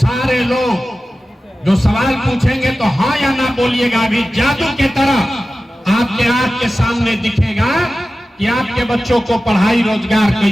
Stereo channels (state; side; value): normal; both; correlation 0.95